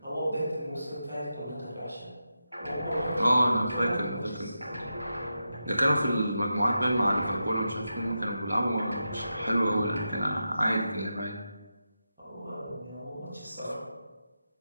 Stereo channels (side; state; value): both; inverted; correlation -0.89